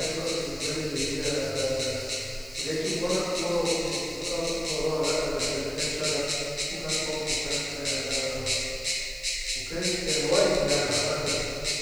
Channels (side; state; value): right; noise; hiss, 23 dB below the sound